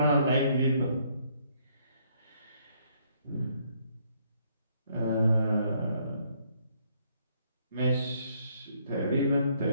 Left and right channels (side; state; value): both; inverted; correlation -0.69